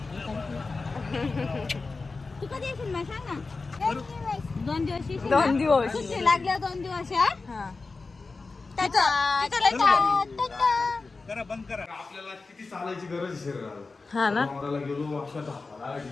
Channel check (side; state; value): right; quieter; 3.9 dB